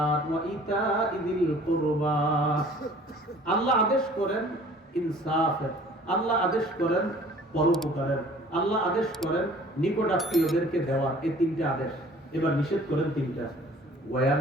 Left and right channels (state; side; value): normal; both; correlation 0.51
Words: ওয়া ইতা'i যিল কুরবা। আল্লাহ আদেশ করেন ইনসাফের, আল্লাহ আদেশ করেন পরোপকারের, আল্লাহ আদেশ করেন নিকটাত্মীয়দেরকে দেওয়ার। এই তিনটা আদেশ। এবার নিষেধ করেন তিনটা। ওয়া